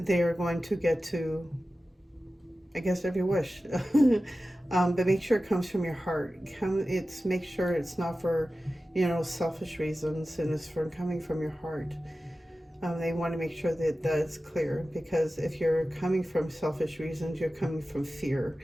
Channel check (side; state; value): both; normal; correlation 0.95